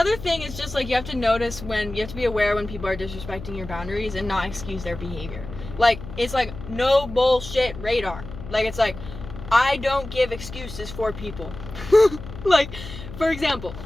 thing is just like you have to be aware when people are disrespecting your boundaries and not excuse their behavior. Like, it's like no bullshit radar. Like, it's like, I don't give excuses for people. Like, for example,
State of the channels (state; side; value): noise; left; hum, 12 dB below the sound